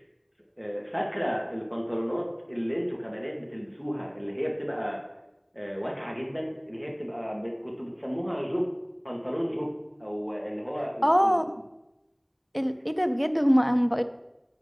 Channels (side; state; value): both; identical; correlation 1.00